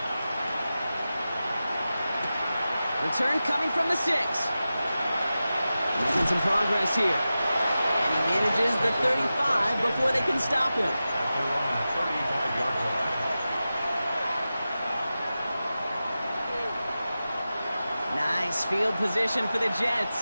Return coming from the 6. Making some progress here. And he manages the 35 before they can stop him. At their own 35-yard line. Nice field position for the Jets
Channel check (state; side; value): inverted; both; correlation -0.94